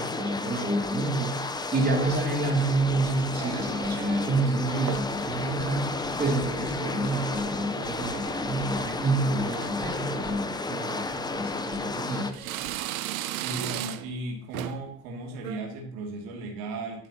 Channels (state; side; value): normal; both; correlation 0.52